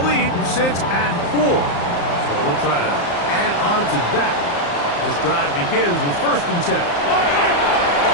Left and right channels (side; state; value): right; late; 34 ms